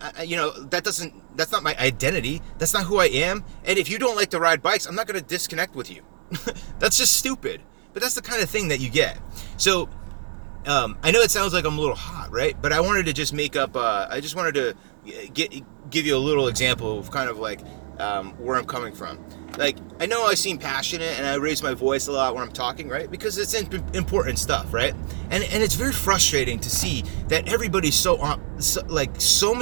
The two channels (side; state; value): left; silent; digital silence